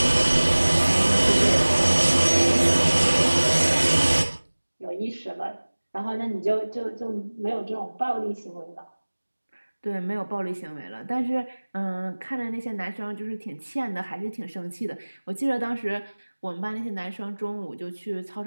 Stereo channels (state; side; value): inverted; both; correlation -1.00